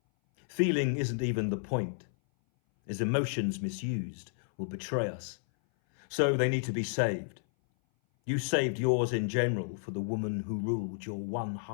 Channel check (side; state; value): right; silent; 57 dB below the other